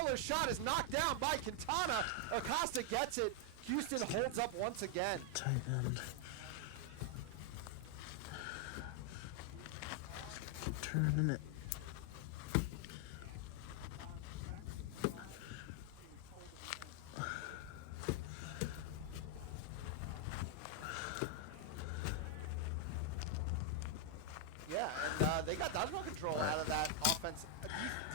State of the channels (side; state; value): both; different; correlation 0.00